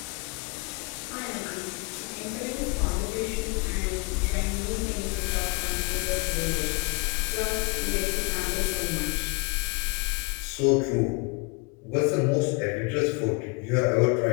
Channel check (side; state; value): right; quieter; 29.8 dB